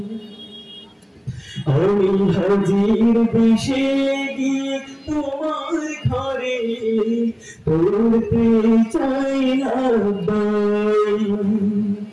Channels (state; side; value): identical; both; correlation 1.00